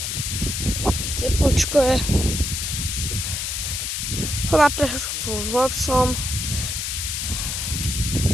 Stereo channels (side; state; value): left; noise; hiss, 2 dB below the sound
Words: teplúčko je. Choď na prechádzku s psom.